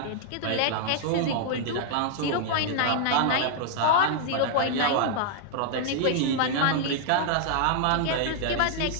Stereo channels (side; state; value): both; different; correlation -0.01